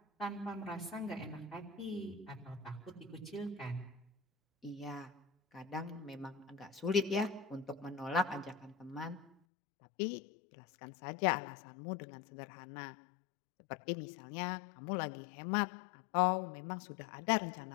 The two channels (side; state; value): right; drops out; at 9.3 s